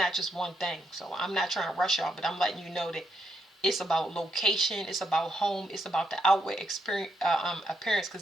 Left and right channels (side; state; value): both; normal; correlation 0.78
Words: just one thing. So I'm not trying to rush y'all, but I'm letting you know that It's about location. It's about home. It's about the outward experience, appearance.